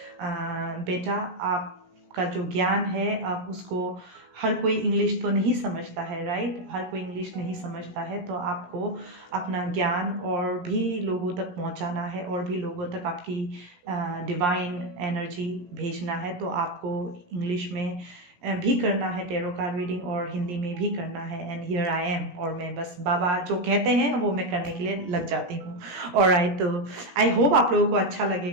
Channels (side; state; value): left; late; 17 ms